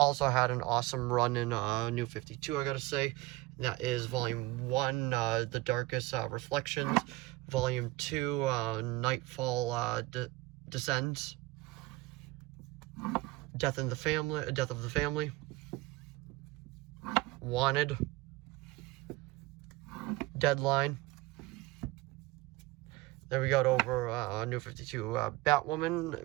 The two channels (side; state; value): left; quieter; 20.0 dB